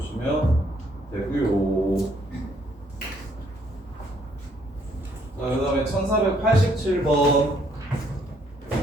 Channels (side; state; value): both; normal; correlation 0.67